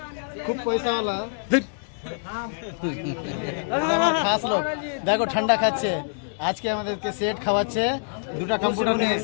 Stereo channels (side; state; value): right; silent; digital silence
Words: খুব পয়সাওয়ালা, এটা আমার খাস লোক। দেখো ঠান্ডা খাচ্ছে, আজকে আমাদেরকে সেট খাওয়াচ্ছে, দুটা কম্পিউটার নিয়ে